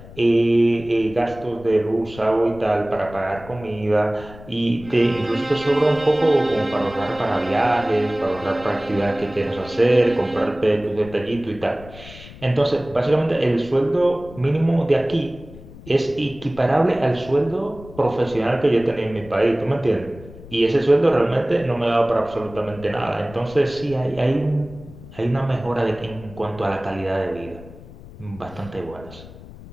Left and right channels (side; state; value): left; noise; rumble, 18 dB below the sound